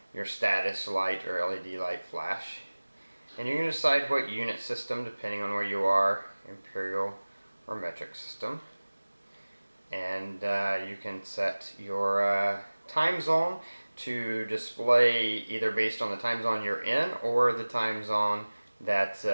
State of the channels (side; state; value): both; inverted; correlation -1.00